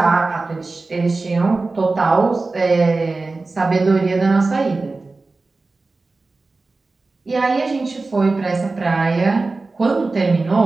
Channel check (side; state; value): left; quieter; 3.6 dB